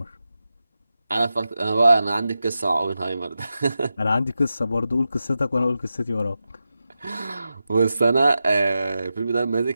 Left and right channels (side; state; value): both; inverted; correlation -0.91